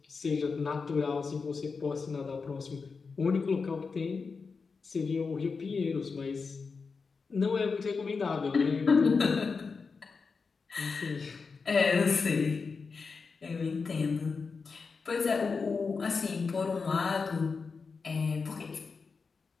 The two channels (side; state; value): right; quieter; 4.9 dB